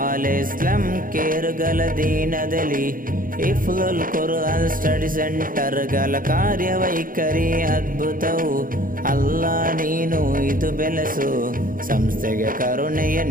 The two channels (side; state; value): left; late; 0.40 ms